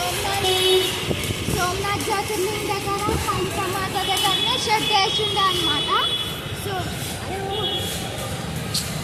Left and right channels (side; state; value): both; identical; correlation 1.00